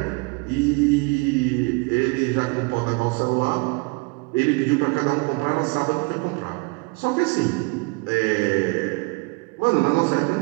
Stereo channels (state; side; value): quieter; left; 28.6 dB